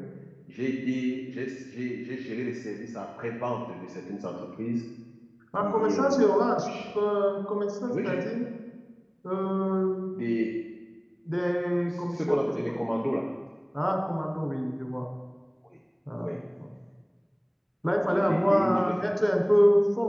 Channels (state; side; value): identical; both; correlation 1.00